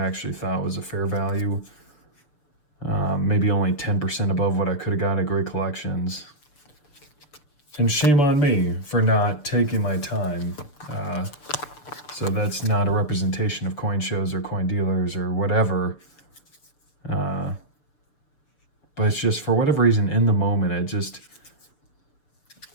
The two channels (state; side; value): late; right; 6.5 ms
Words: actually thought was a fair value. Maybe only 10% above what I could have got at Great Collections. And shame on me for not taking my time. So that's not a representation of coin shows or coin dealers or whatever. But it's just, for whatever reason, in the moment,